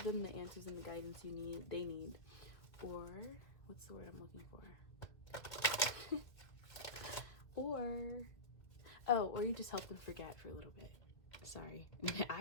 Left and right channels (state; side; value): late; right; 2.3 ms